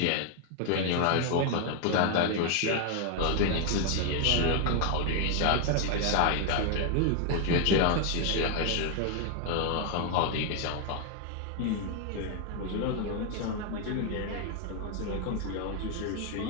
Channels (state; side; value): different; both; correlation 0.00